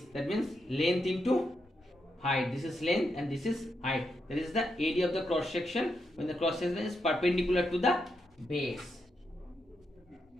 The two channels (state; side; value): normal; both; correlation 0.83